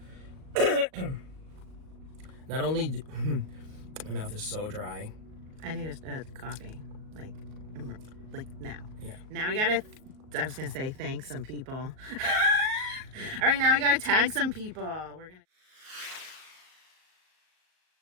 Not only... My mouth is so dry. I need a coffee. Like now. Yeah. Now we gotta... I was gonna say thank some people. All right, now we gotta tag some people. We're gonna...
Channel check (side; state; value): left; late; 38 ms